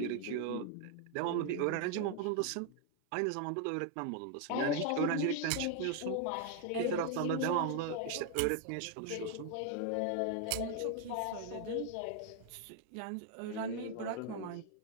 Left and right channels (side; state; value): both; different; correlation 0.00